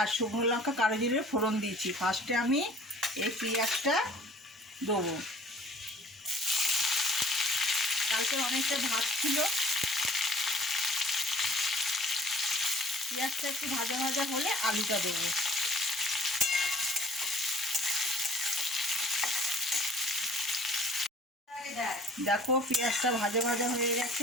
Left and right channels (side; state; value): both; normal; correlation 0.52